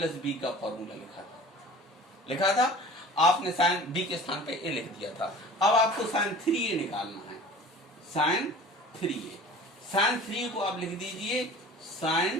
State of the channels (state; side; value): normal; both; correlation 0.43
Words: b का फॉर्मूला लिखा था, आपने sin b के स्थान पे a लिख दिया था। अब आपको sin 3a निकालना है, sin 3a, sin 3 को आप लिख दीजिए